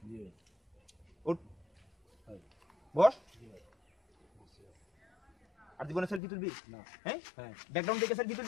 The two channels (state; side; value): drops out; right; at 6.2 s